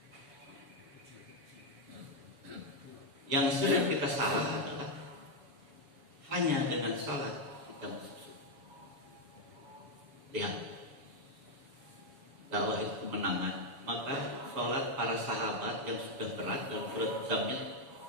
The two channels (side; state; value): left; late; 7.1 ms